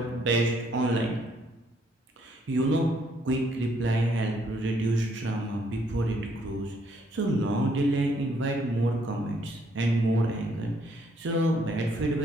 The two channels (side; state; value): both; normal; correlation 0.69